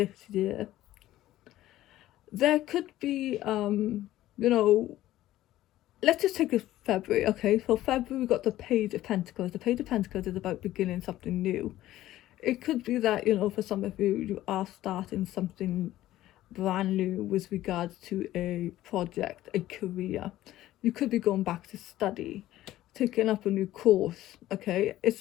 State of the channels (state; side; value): quieter; right; 14.6 dB